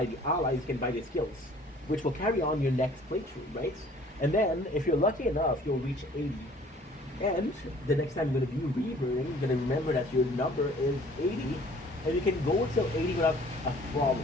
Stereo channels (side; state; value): both; normal; correlation 0.54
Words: the allies, you can buy the skills, which will carry on your next playthrough, right? And then, if you're lucky enough, you'll reach 80. And the next time you're going to be reverting, you're going to remember that your number is 80, and you can go till 80 without a